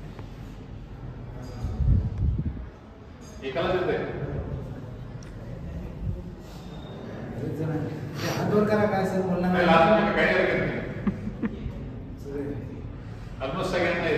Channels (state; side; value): identical; both; correlation 1.00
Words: एकालाच येते. हातवर करा काय सर बोलणार काही हरकत नाही, ऑलमोस्ट सगळ्यांना